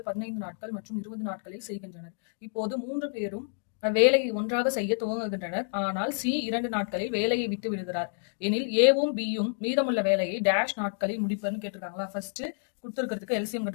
15 நாட்கள் மற்றும் 20 நாட்களில் செய்கின்றனர். இப்போது 3 பேரும் வேலையை ஒன்றாக செய்ய துவங்குகின்றனர். ஆனால் சி 2 நாட்களில் வேலையை விட்டு விடுகிறார். எனில் ஏவும் பியும் மீதமுள்ள வேலையை டேஷ் நாட்களில் முடிப்பர்னு கேட்டிருக்காங்களா? ஃபர்ஸ்ட் கொடுத்துருக்கிறதுக்கு எல்சிஎம்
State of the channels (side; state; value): right; silent; digital silence